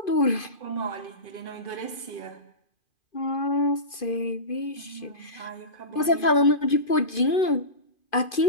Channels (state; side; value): late; right; 2.5 ms